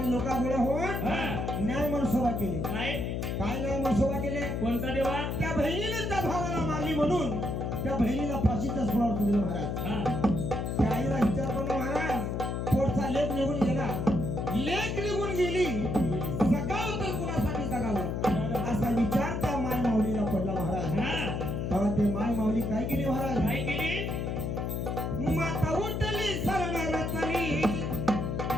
लोक गोळा होऊन हा न्याय मनसोबा केली काय काय न्याय मनसोबा केले कोणता देवा त्या बहिणीने त्या भावाला मारली म्हणून त्या बहिणीला फाशीच्या सोळावर दिलं महाराज हा त्या आईला विचार केला महाराज पोटचा लेख निघून गेला लेख निघून गेली जगाव तर कुणासाठी जगावं असा विचार त्या माय माऊलीला पडला महाराज हा तेव्हा ते माय माऊली काय केली महाराज काय केली माता उठली शरण रचली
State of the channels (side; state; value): left; noise; hum, 1 dB below the sound